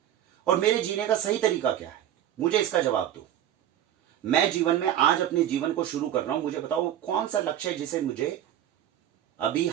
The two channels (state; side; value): quieter; left; 11.3 dB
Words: और मेरे जीने का सही तरीका क्या है, मुझे इसका जवाब दो। मैं जीवन में आज अपने जीवन को शुरू कर रहा हूं, मुझे बताओ कौन सा लक्ष्य है जिसे मुझे अभी